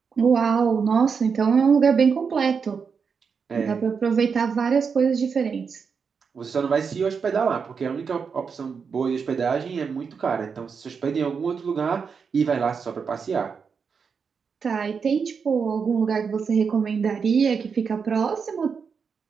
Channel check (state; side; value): quieter; left; 5.9 dB